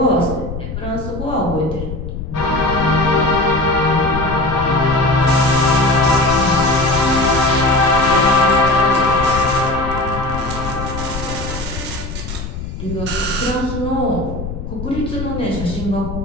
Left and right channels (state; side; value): noise; left; rumble, 8 dB below the sound